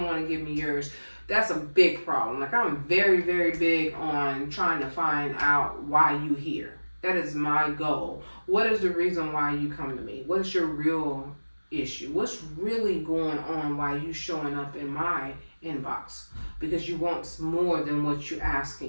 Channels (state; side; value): inverted; both; correlation -1.00